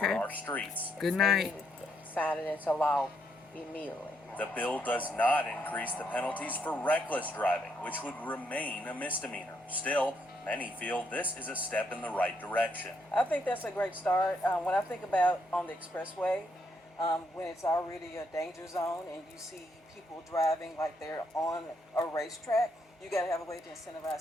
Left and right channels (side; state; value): both; normal; correlation 0.76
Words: our streets. Good night. Sign it into law immediately. The bill does not increase the penalties for reckless driving, which would remain a misdemeanor. Still, many feel this is a step in the right direction. I think that's a great start. When I think about on the expressway, when it's already a danger zone and you see people driving like they're on a racetrack, you got to have a way to